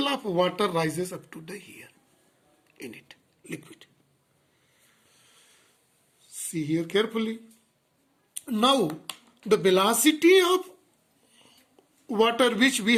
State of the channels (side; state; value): both; identical; correlation 1.00